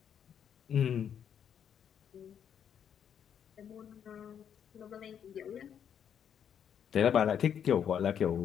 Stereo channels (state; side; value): quieter; right; 8.5 dB